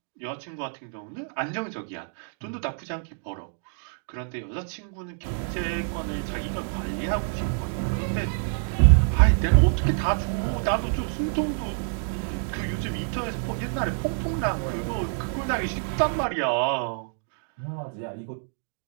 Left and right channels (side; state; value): left; silent; digital silence